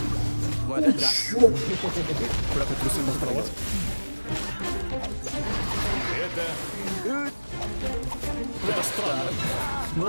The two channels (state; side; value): inverted; both; correlation -1.00